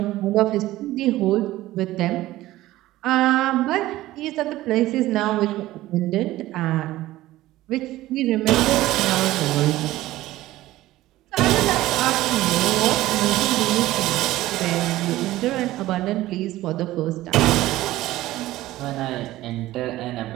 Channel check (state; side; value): quieter; left; 16.3 dB